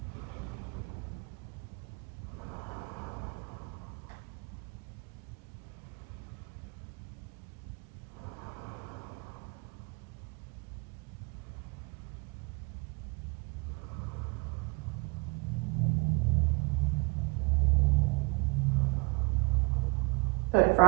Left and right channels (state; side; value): quieter; left; 29.4 dB